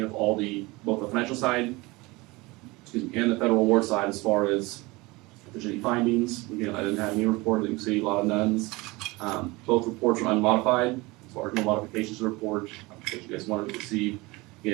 both the financial side, and the federal award side as far as if there's any findings. Again, I didn't have any report, you can see a lot of nones. Both reports are unmodified, as far as no modifications to the report, that you guys wanted to receive.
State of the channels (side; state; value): left; quieter; 23.1 dB